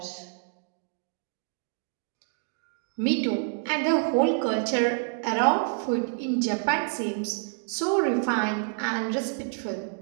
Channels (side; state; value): left; silent; 58 dB below the other